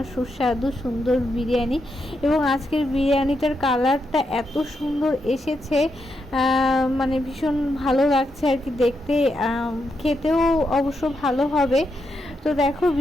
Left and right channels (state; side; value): normal; both; correlation 0.83